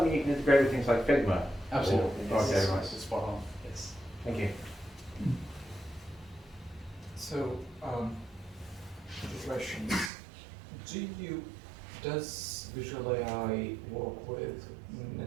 mean you can integrate with things like Figma? Absolutely. Or- Yes. Okay, right. Spot on. Yes. Thank you. So, the questions. Does Visual AI work with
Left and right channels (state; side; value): drops out; left; at 10.1 s